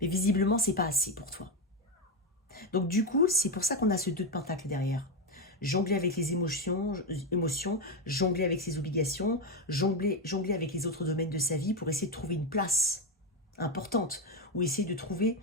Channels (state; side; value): normal; both; correlation 0.10